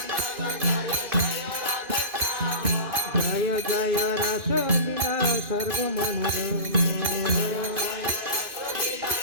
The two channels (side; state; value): left; late; 2.5 ms